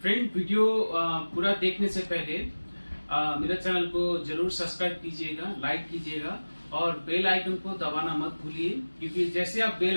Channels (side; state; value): both; inverted; correlation -1.00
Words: Friend, video पूरा देखने से पहले मेरे चैनल को जरूर सब्सक्राइब कीजिएगा, लाइक कीजिएगा और बेल आइकन को दबाना मत भूलिए, क्योंकि जैसे आप